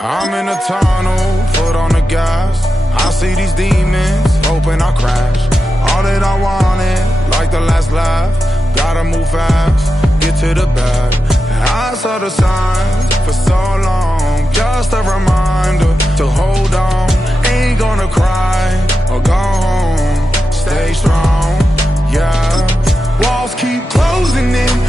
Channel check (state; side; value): normal; both; correlation 0.90